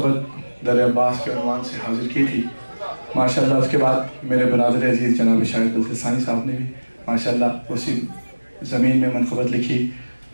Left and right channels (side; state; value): both; inverted; correlation -1.00